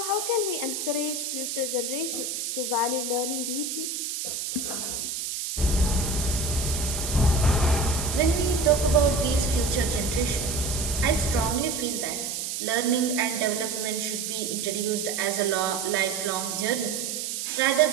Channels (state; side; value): noise; right; hiss, 4 dB below the sound